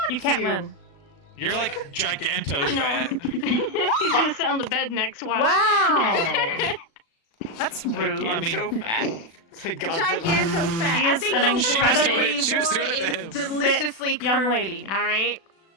You can't win. You're like giganto fat. He's gonna sit on the bed next. Watch. Wow. That's rude. Giganto fat. Giganto fat. She I is think an the incredibly word She was doing it to him. deliciously fit young curvy, lady. All right.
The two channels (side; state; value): right; late; 36 ms